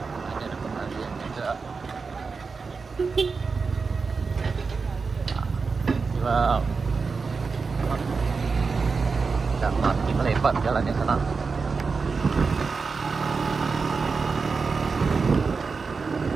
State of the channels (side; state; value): left; quieter; 4.7 dB